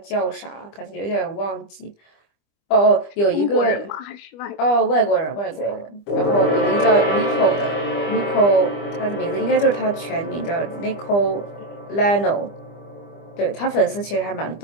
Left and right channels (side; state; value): right; late; 25 ms